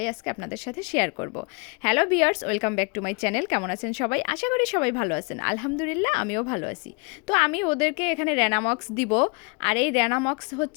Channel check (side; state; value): right; quieter; 31.7 dB